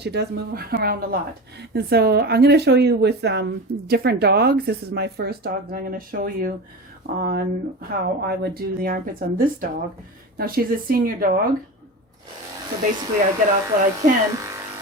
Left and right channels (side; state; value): both; normal; correlation 0.28